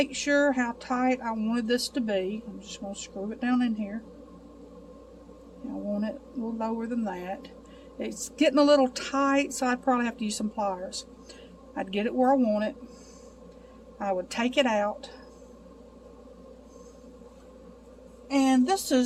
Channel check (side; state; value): both; identical; correlation 1.00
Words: sure how tight I wanted this to be. I'm just going to screw it down in here. I want it a little lower than that. It's getting a little tight, so I'd probably have to use some pliers. I'd get it where I want it. I would take it out. And this